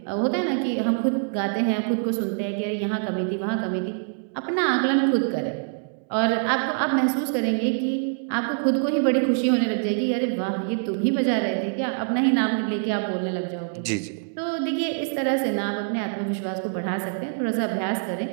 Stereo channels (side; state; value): left; silent; digital silence